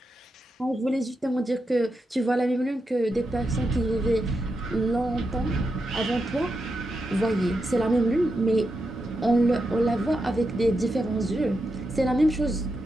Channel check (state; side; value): normal; both; correlation 0.86